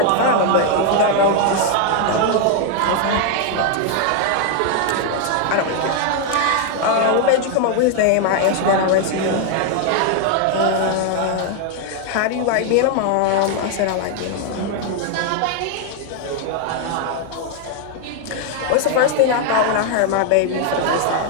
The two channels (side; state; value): both; different; correlation 0.00